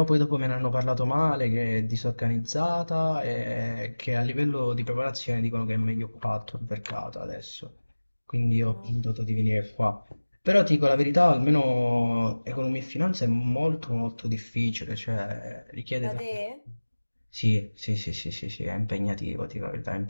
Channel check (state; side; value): inverted; both; correlation -1.00